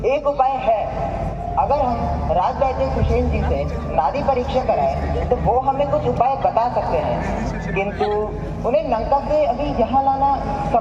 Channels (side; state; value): both; identical; correlation 1.00